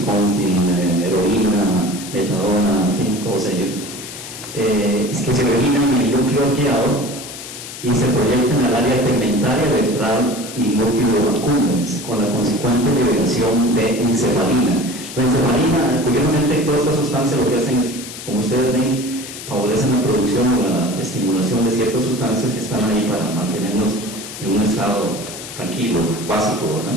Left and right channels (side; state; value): left; noise; hiss, 11 dB below the sound